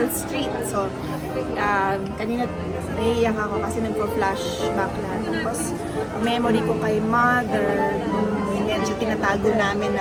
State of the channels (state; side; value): identical; both; correlation 1.00